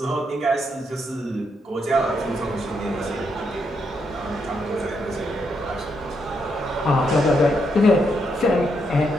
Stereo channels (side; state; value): both; normal; correlation 0.79